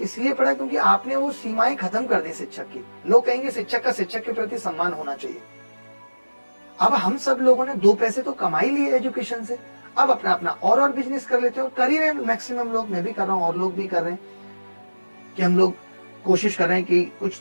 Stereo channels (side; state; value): both; inverted; correlation -1.00